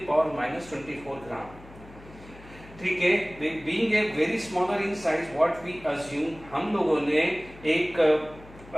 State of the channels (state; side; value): noise; left; hum, 20 dB below the sound